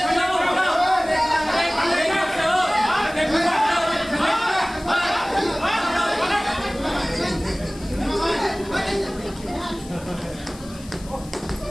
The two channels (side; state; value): left; noise; hiss, 20 dB below the sound